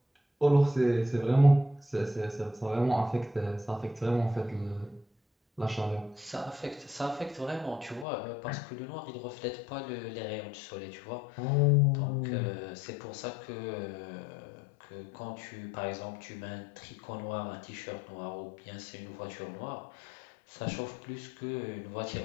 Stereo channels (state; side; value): drops out; right; at 8.1 s